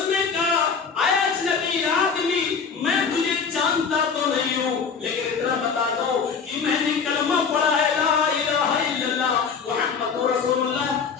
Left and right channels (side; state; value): right; quieter; 5.9 dB